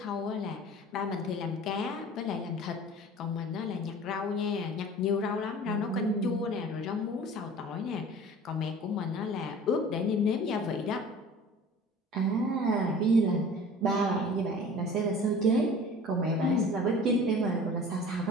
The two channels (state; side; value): normal; both; correlation 0.43